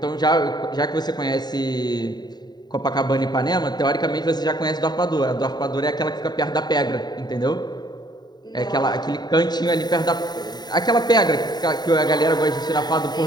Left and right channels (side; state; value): right; late; 0.20 ms